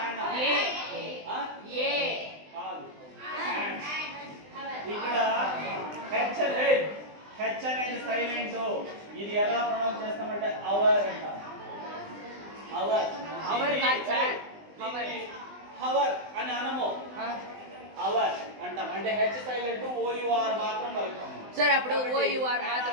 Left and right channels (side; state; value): left; late; 20 ms